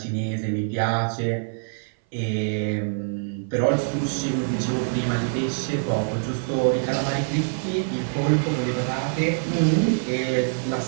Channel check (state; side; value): silent; left; 58 dB below the other